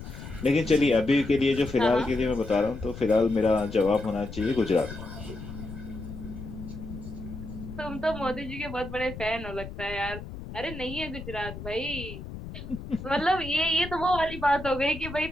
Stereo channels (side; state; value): left; noise; rumble, 11 dB below the sound